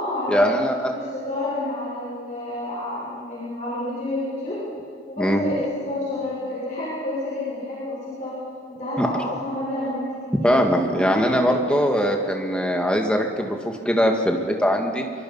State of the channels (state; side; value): normal; both; correlation 0.66